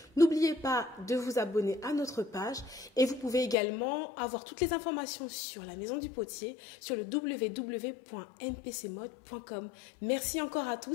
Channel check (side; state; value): right; drops out; at 3.6 s